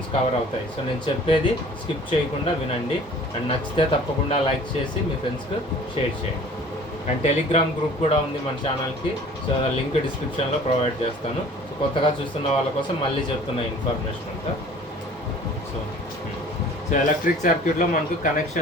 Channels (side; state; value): both; normal; correlation 0.48